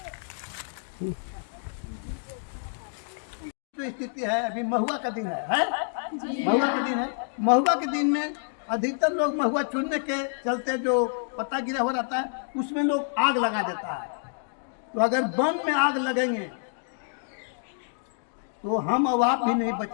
जो स्थिति है अभी महुआ का दिन है? महुआ का दिन है। महुआ के दिन में अधिकतर लोग महुआ चुनने के चलते जो पत्ता गिरा हो रहता है उसमें लोग आग लगा देता है। तो अगर वन में आग लगेंगे तो हम और आप भी नहीं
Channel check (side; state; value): right; silent; digital silence